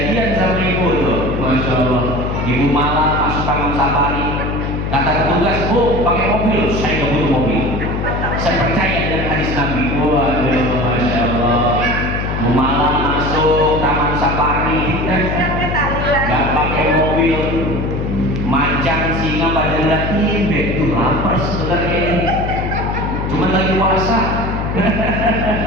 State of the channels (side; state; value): left; noise; hum, 2 dB below the sound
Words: sama Ibu tuh. Masya Allah. Ibu malam masuk Taman Safari, kata petugas, Bu, pakai mobil. Saya nggak butuh mobil, saya percaya dengan hadis Nabi. Waduh, Masya Allah. Bu malam masuk Taman Safari, nggak pakai mobil, macan singa pada ngeliatin, tuh lapar sebenarnya ini, cuman lagi puasa.